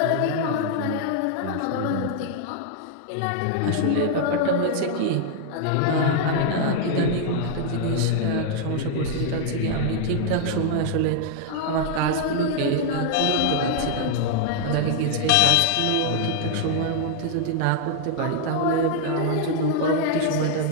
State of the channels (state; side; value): different; both; correlation 0.00